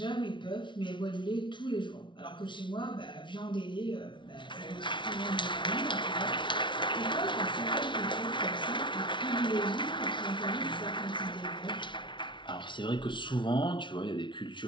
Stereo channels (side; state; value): right; late; 0.24 ms